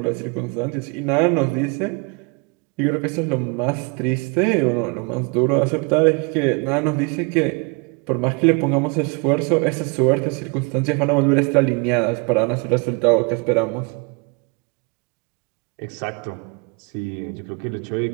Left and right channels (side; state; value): left; quieter; 32.2 dB